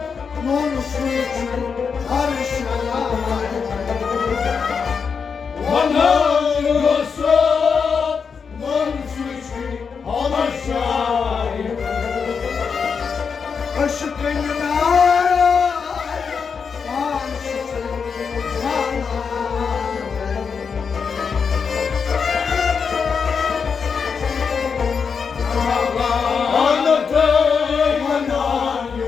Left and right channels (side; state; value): right; quieter; 5.9 dB